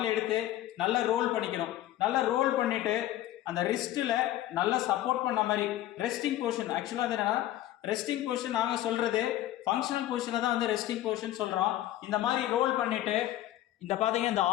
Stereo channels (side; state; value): right; quieter; 13.9 dB